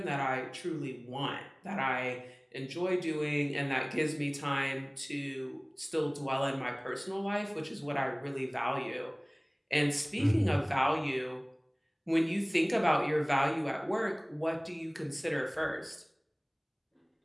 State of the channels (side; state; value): both; identical; correlation 1.00